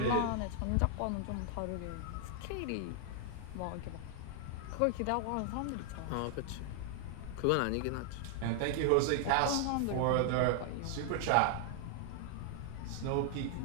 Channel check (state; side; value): different; both; correlation 0.00